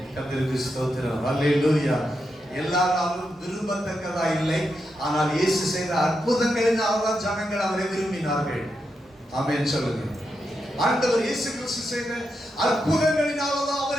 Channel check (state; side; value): normal; both; correlation 0.85